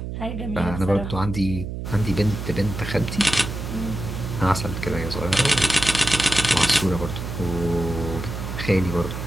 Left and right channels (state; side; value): noise; right; hum, 6 dB below the sound